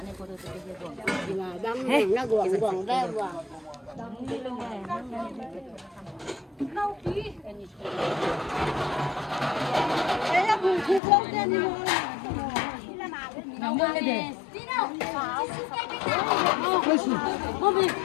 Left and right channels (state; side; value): drops out; right; at 11.0 s